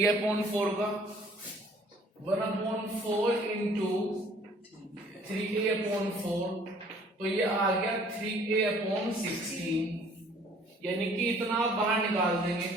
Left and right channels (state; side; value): normal; both; correlation 0.56